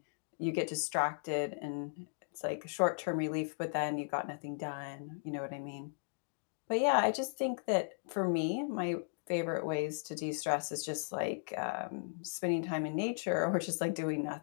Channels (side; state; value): right; silent; digital silence